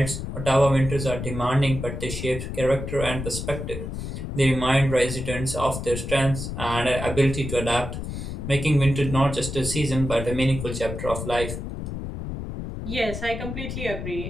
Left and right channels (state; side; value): noise; left; rumble, 6 dB below the sound